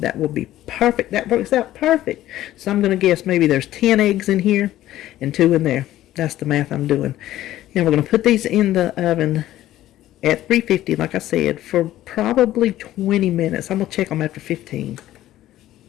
will be perfect. That works out perfect. So I'm going to guess maybe there's 10 eggs in here and 2 in there. That's the math I'm doing. Now we're going to put these in the oven at 350, like I said, for probably 20 minutes. I'm going to check them after 15.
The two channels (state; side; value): quieter; right; 14.0 dB